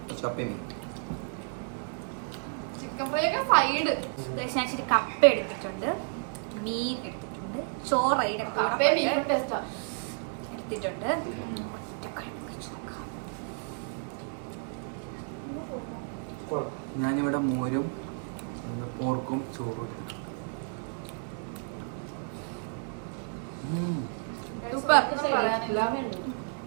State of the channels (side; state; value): left; silent; 57 dB below the other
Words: കപ്പ മീൻ, ചിക്കൻ ഫ്രൈ ഒക്കെ സൈഡ്. ഞാൻ ഇച്ചിരി കപ്പ എടുത്തിട്ടുണ്ട്, മീൻ എടുത്തിട്ടുണ്ട്, ചോറയുടെ കൂടെ എടുത്തിട്ടുണ്ട്. ഞാനിവിടെ മോരും പോർക്കും ചോറും എടുത്തിട്ടുണ്ട്.